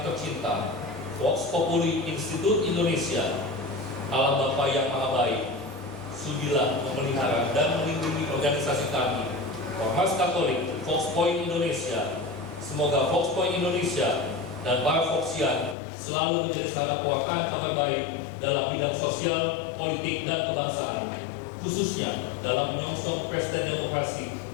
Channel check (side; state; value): right; drops out; at 15.8 s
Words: tercinta, Vox Populi Institute Indonesia, Allah Bapa yang Maha Baik, sudilah memelihara dan melindungi organisasi kami, Ormas Katolik Vox Point Indonesia. Semoga Vox Point Indonesia dan para Voxian selalu menjadi sarana pewartaan kabar baik dalam bidang sosial, politik, dan kebangsaan, khususnya dalam menyongsong pesta demokrasi